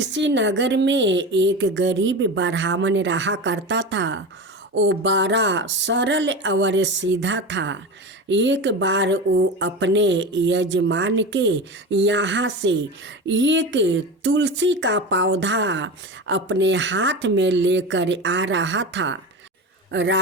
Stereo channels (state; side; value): normal; both; correlation 0.26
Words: नगर में एक गरीब ब्राह्मण रहा करता था। वो बड़ा सरल और सीधा था। एक बार वो अपने यजमान के यहाँ से एक तुलसी का पौधा अपने हाथ में लेकर आ रहा था।